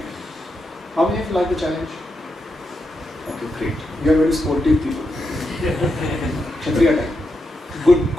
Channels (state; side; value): normal; both; correlation 0.85